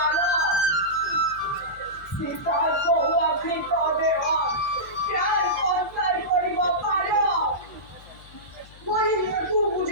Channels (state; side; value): noise; left; hum, 22 dB below the sound